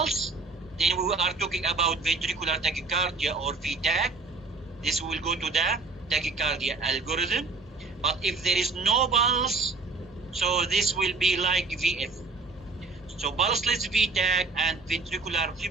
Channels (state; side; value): quieter; left; 3.8 dB